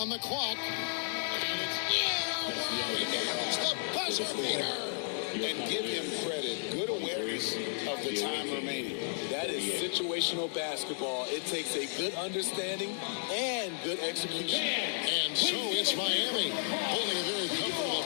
the clock. It's the buzzer beater. And give him credit. Good awareness of the time remaining. That is situational basketball. It takes a good understanding and good execution. And so it's Miami holding a very comfortable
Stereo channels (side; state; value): right; silent; digital silence